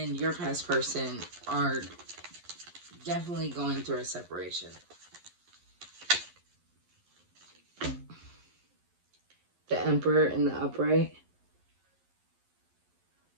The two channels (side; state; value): left; late; 11 ms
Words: your past person are definitely going through a separation. The Emperor in the upright.